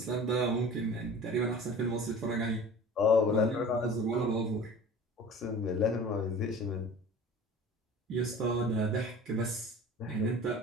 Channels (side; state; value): both; normal; correlation 0.41